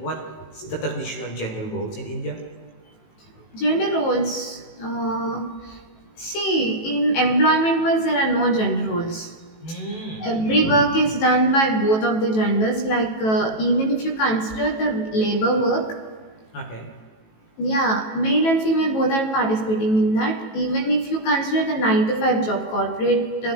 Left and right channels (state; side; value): late; right; 18 ms